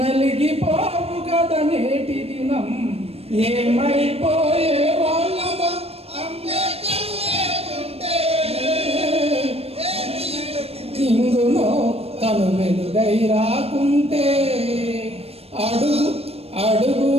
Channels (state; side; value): late; left; 0.29 ms